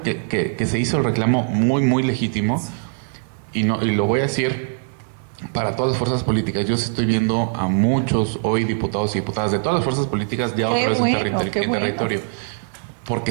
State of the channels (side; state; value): left; silent; 60 dB below the other